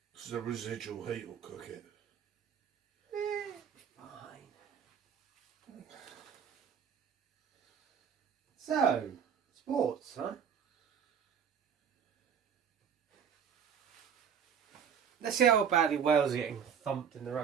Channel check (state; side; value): quieter; left; 7.6 dB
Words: Because the residual heat will cook it. Fine. So, sports, huh? Let's see how badly Wales are getting thumped in the